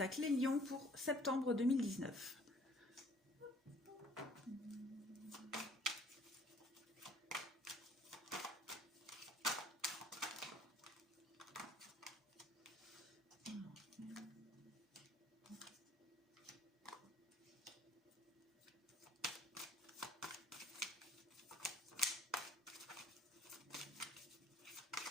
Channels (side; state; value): both; normal; correlation 0.57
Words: les lions pour septembre 2019.